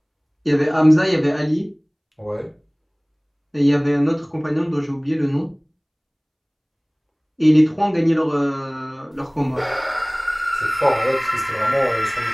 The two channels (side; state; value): both; identical; correlation 1.00